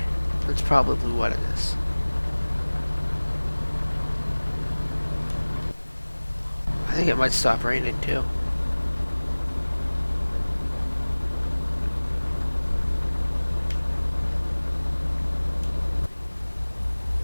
That's probably what it is. I think it might stop raining too.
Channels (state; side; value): inverted; both; correlation -1.00